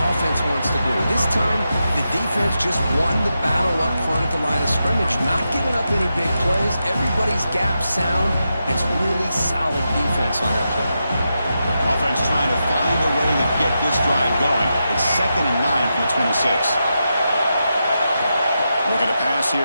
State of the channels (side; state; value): both; inverted; correlation -0.87